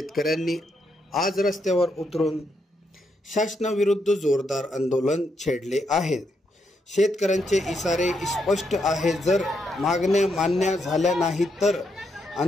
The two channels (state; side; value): normal; both; correlation 0.79